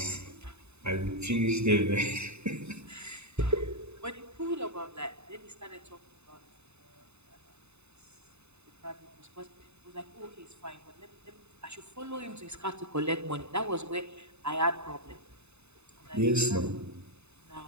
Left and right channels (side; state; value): left; late; 0.81 ms